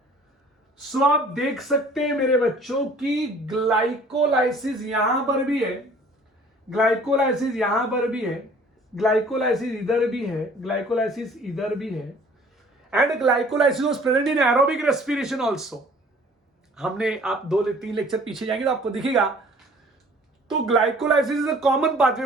सो आप देख सकते हैं मेरे बच्चों की ग्लाइकोलाइसिस यहां पर भी है, ग्लाइकोलाइसिस यहां पर भी है, ग्लाइकोलाइसिस इधर भी है, ग्लाइकोलाइसिस इधर भी है, and glycolysis was present in aerobic respiration also. हमने आप 2-3 लेक्चर पीछे जाएंगे तो आपको दिखेगा। तो glycolysis is a common pathway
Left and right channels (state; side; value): normal; both; correlation 0.52